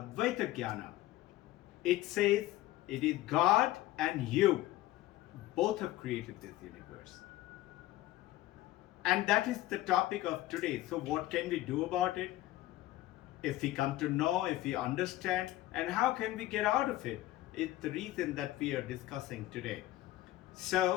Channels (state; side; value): quieter; right; 15.8 dB